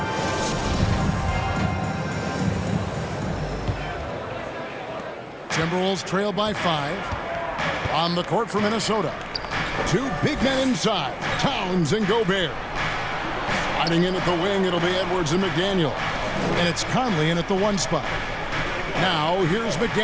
Timberwolves trail by 5. On the court for Minnesota. 2 big men inside. Towns and Gobert. Sliding in at the wing, it'll be Edwards and McDaniel. And it's Conley in at the 1 spot. Now, here's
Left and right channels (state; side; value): identical; both; correlation 1.00